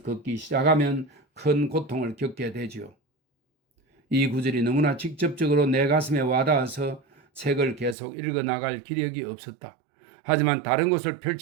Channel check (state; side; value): drops out; left; at 8.0 s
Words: 걷기 시작하면 큰 고통을 겪게 되지요. 이 구절이 너무나 직접적으로 내 가슴에 와닿아서 책을 계속 읽어나갈 기력이 없었다. 하지만 다른 곳을